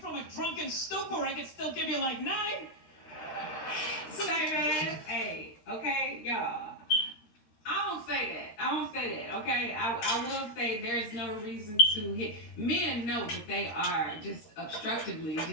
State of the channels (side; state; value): right; late; 13 ms